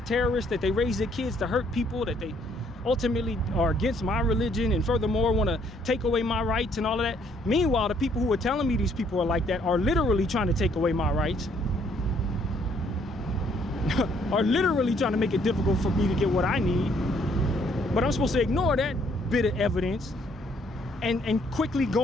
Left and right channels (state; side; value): normal; both; correlation 0.66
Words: terrorists, that they raise their kids to hurt people, that they ultimately are against my religion, and furthermore want to take away my rights and all of that. Meanwhile, the people who are telling me these people are like that are literally trying to take away my rights. Are literally trying to make it difficult for me to get what I need. But I'm supposed to ignore that bit of evidence and quickly